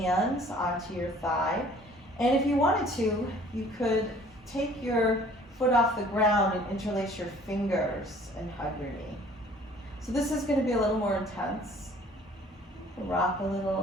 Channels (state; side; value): normal; both; correlation 0.53